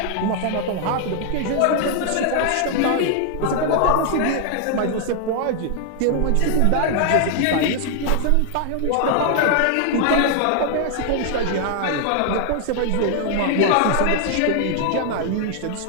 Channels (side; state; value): both; different; correlation 0.00